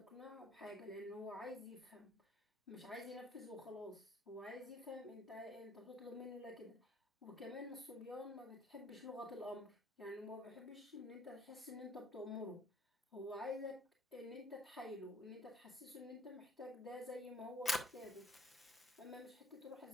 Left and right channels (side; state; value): both; normal; correlation 0.57